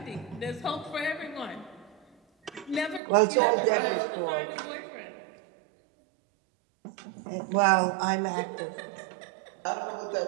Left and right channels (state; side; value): drops out; left; at 3.0 s